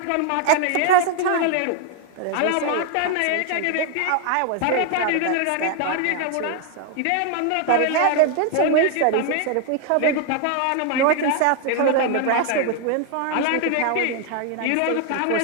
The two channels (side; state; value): both; different; correlation 0.00